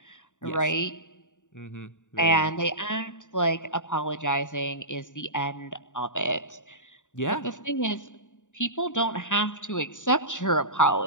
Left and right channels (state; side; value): late; right; 0.86 ms